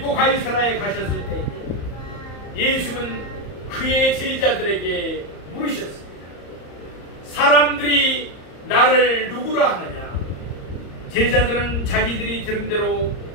가이사라에 가셨을 때 예수님은 그의 제자들에게 물으셨습니다. 사람들이 나를 누구라 하느냐? 제자들은 자기들이 들은 대로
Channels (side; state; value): right; late; 34 ms